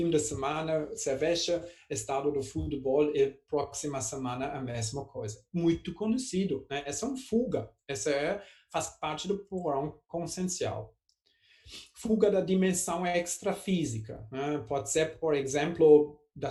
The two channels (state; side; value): identical; both; correlation 1.00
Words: de semana, cerveja, estado do futebol e próxima semana a mesma coisa. Muito conhecido, né? Essa é uma fuga, faz parte do porão consciencial. Fuga da dimensão extrafísica, né? Pode ser, por exemplo,